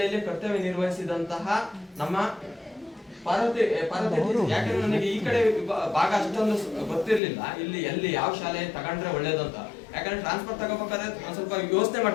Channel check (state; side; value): drops out; right; at 7.2 s